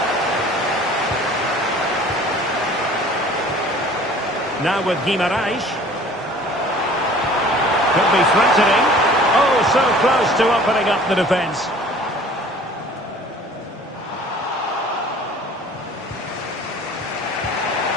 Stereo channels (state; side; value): normal; both; correlation 0.49